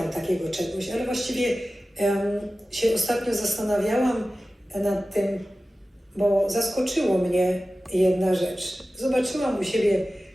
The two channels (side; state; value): both; normal; correlation 0.95